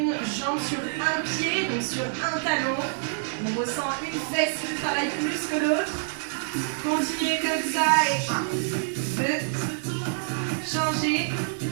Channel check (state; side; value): silent; left; digital silence